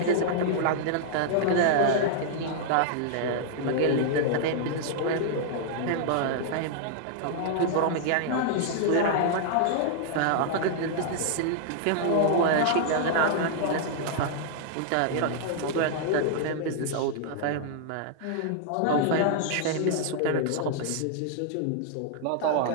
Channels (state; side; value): different; both; correlation -0.01